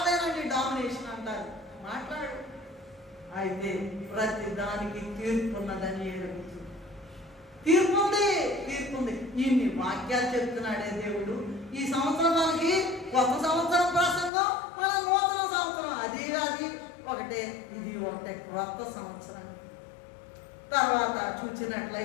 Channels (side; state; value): right; drops out; at 14.3 s